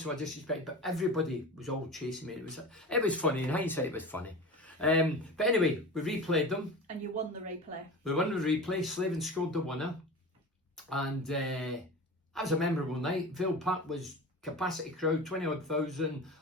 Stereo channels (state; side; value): normal; both; correlation 0.32